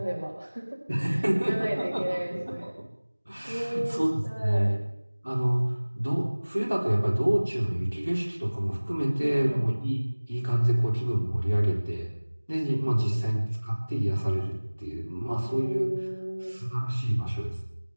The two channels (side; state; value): both; inverted; correlation -1.00